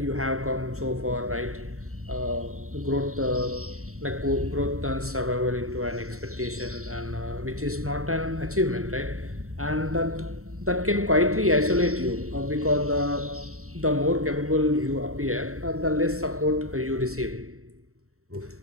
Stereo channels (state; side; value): late; left; 0.64 ms